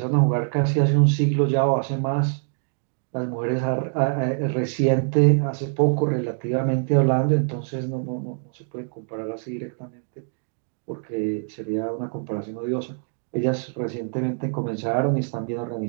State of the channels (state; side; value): silent; left; digital silence